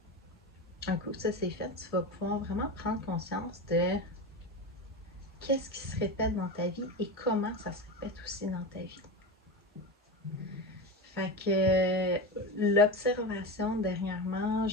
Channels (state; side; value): normal; both; correlation 0.22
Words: coup ça c'est fait, tu vas pouvoir vraiment prendre conscience de qu'est-ce qui se répète dans ta vie et comment ça se répète aussi dans ta vie. Fait que l'observation dernièrement,